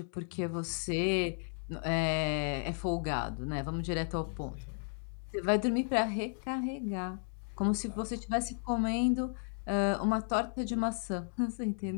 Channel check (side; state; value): right; silent; 55 dB below the other